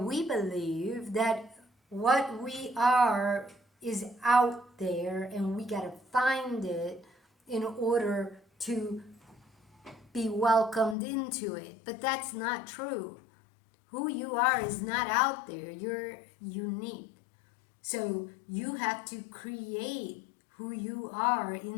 we believe that what we are is out there and we got to find it in order to be welcomed into it. But that's not true. Who you are is not out there. You're unique. So you have to create who you are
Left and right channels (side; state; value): right; drops out; at 11.0 s